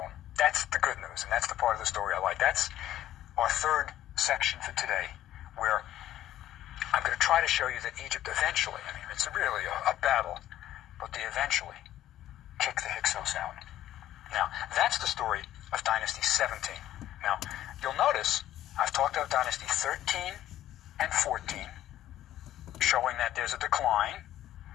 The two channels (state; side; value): quieter; right; 13.0 dB